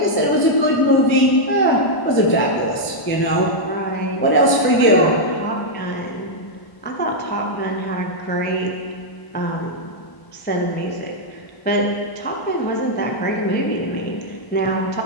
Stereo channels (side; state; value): right; late; 1.0 ms